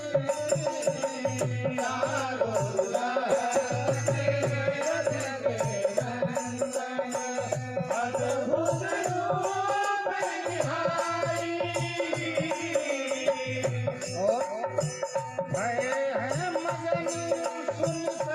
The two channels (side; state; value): both; identical; correlation 1.00